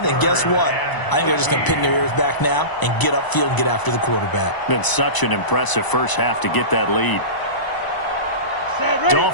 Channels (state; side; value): late; right; 1.0 ms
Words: and guess what? I think they're just going to pin their ears back now and get upfield and get after the quarterback. Been such an impressive first half to get that lead.